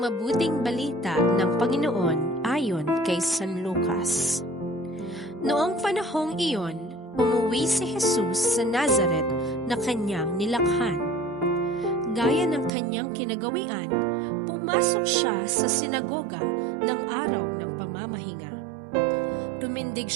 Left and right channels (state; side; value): drops out; left; at 12.7 s